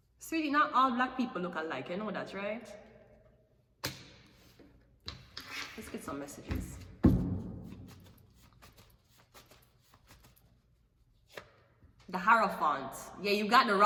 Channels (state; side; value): identical; both; correlation 1.00